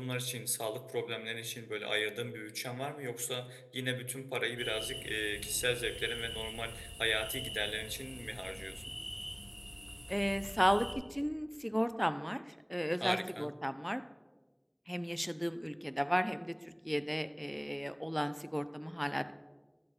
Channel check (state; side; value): identical; both; correlation 1.00